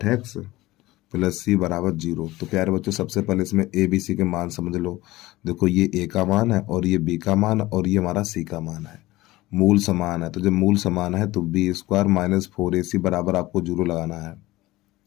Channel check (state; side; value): quieter; right; 18.4 dB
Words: प्लस सी बराबर 0। तो प्यारे बच्चों, सबसे पहले इसमें ए बी सी के मान समझ लो। देखो ये ए का मान है और ये बी का मान और ये हमारा सी का मान है। मूल समान है, तो जब मूल समान है तो b² माइनस 4ac बराबर आपको 0 लगाना है।